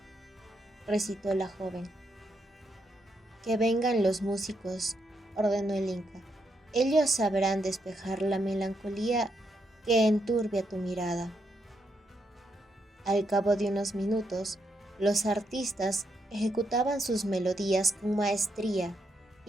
recitó la joven. Que vengan los músicos, ordenó el Inca. Ellos sabrán despejar la melancolía que enturbia tu mirada. Al cabo de unos minutos, los artistas ejecutaban sus melodías con maestría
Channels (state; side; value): normal; both; correlation 0.79